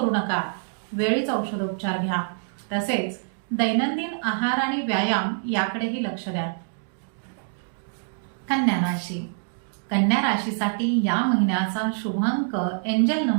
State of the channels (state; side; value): silent; left; digital silence